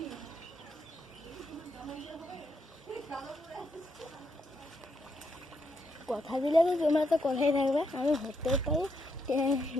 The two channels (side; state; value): both; normal; correlation 0.79